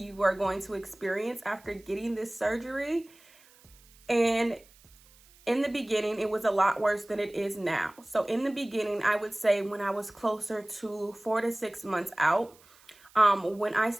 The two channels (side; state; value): right; noise; hiss, 27 dB below the sound